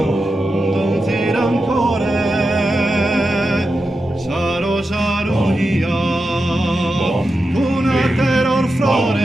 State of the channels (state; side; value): normal; both; correlation 0.89